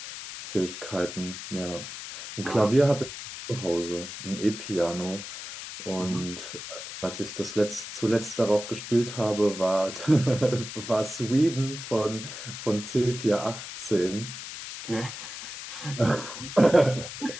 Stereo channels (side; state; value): left; noise; hiss, 10 dB below the sound